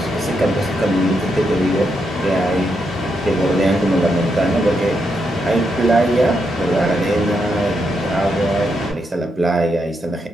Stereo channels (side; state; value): both; normal; correlation 0.81